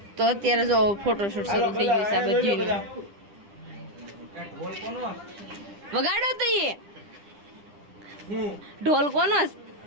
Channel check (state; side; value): late; left; 9.9 ms